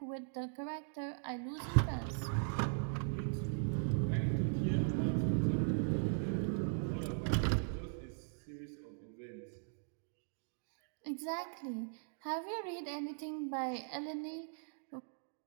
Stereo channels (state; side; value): silent; left; digital silence